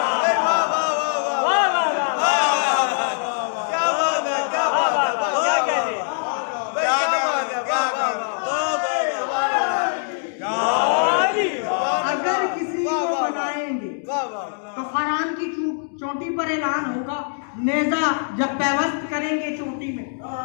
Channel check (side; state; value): right; silent; digital silence